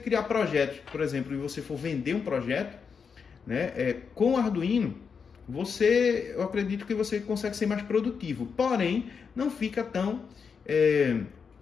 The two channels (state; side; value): quieter; right; 6.0 dB